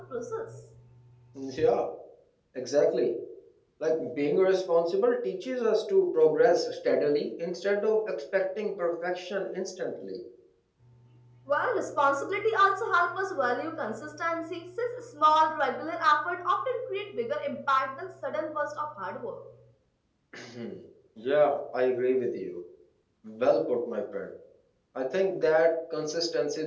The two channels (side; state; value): both; identical; correlation 1.00